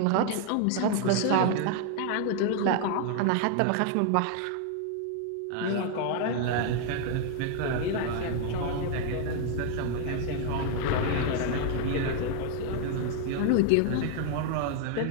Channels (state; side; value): different; both; correlation 0.00